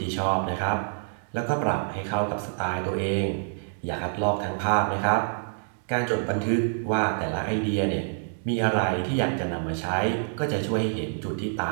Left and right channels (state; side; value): silent; left; digital silence